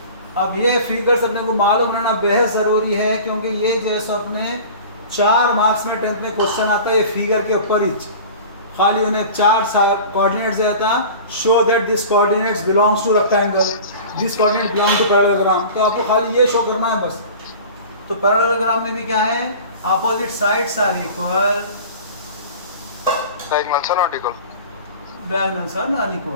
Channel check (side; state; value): both; inverted; correlation -0.39